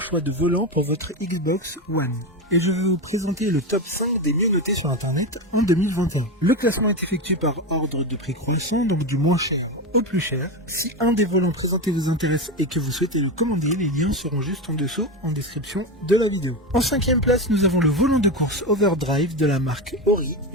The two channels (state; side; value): normal; both; correlation 0.17